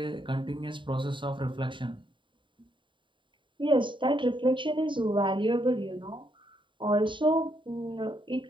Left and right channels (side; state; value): left; late; 0.23 ms